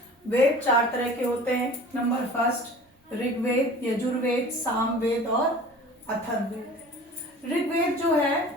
वेद 4 तरह के होते हैं। नंबर फर्स्ट, ऋग्वेद, यजुर्वेद, सामवेद और अथर्ववेद। ऋग्वेद जो है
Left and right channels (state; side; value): normal; both; correlation 0.43